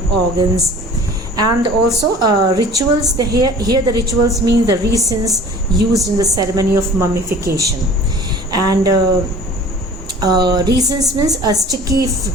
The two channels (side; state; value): both; normal; correlation 0.45